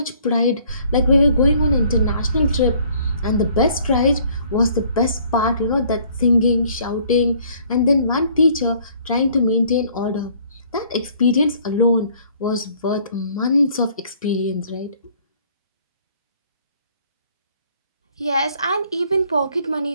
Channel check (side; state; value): both; inverted; correlation -0.59